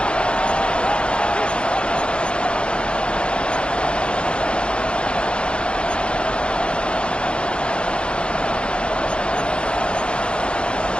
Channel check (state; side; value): late; right; 0.056 ms